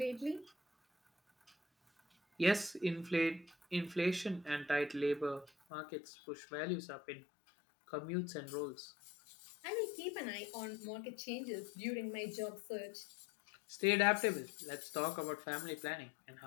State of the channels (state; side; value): drops out; right; at 5.5 s